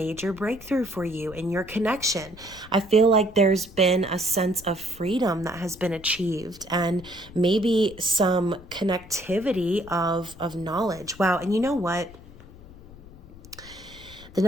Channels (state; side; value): noise; left; rumble, 19 dB below the sound